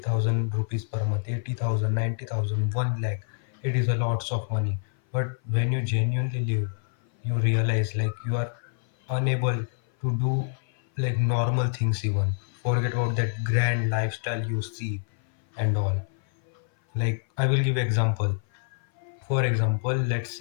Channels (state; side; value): silent; right; 57 dB below the other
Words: rupees per month, 80,000, 90,000, 1 lakh, it is a lots of money. But when you genuinely live, you realize like you are unable to do like normal things even. Forget about that grand lifestyle you see and all. Like I will give example. For example, let's